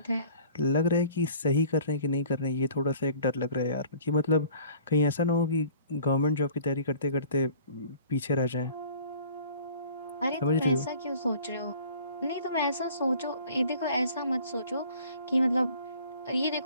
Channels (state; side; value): inverted; both; correlation -0.49